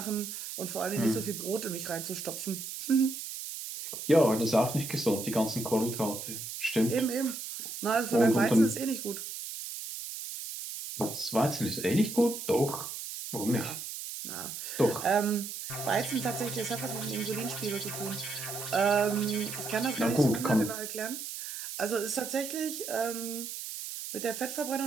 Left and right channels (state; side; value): noise; right; hiss, 7 dB below the sound